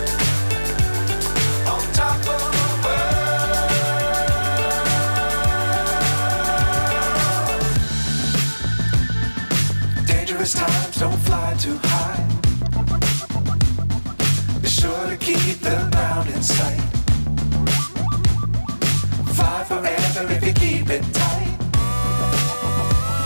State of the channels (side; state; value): both; inverted; correlation -1.00